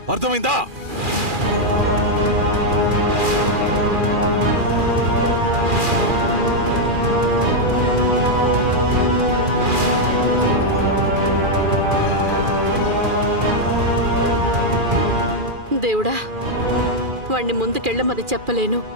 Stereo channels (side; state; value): left; late; 2.4 ms